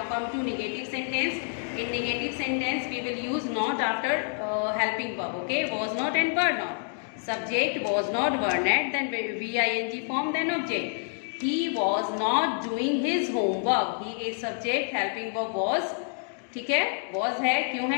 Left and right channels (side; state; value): right; silent; 59 dB below the other